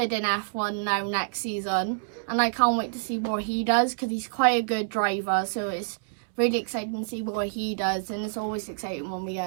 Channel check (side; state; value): left; silent; digital silence